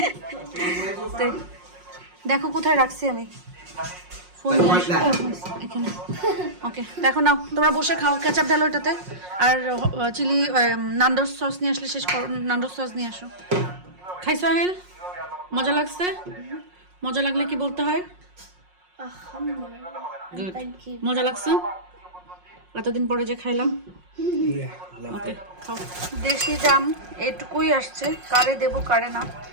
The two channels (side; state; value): left; late; 5.5 ms